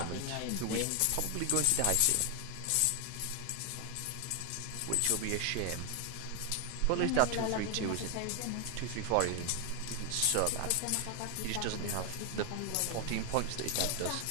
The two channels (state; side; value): different; both; correlation 0.00